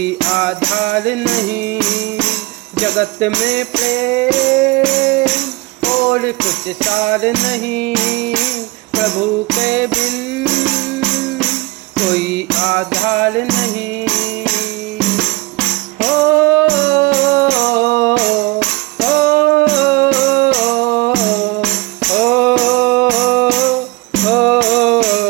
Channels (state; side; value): quieter; left; 22.7 dB